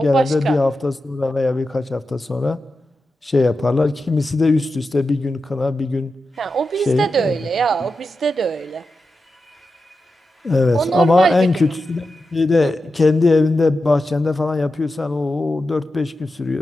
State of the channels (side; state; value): both; normal; correlation 0.90